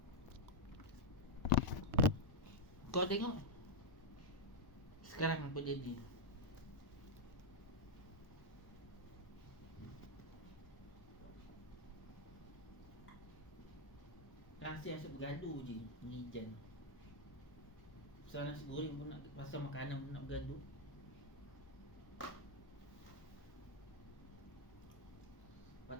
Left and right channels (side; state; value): right; late; 1.0 ms